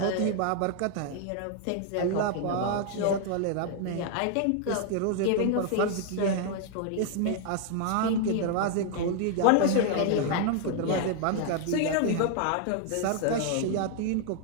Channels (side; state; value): both; different; correlation 0.00